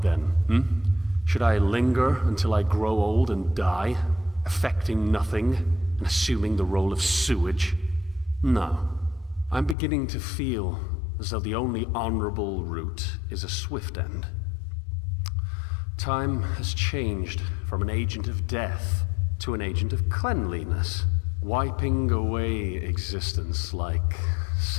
then, Should I linger until I grow old and die, affecting nothing and assuming the role of sewage? No. I'm beginning to feel as though the only honorable route is a swift end. Time has changed from an agent of death to an agent of cleanliness, wiping away existence like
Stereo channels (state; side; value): drops out; right; at 9.8 s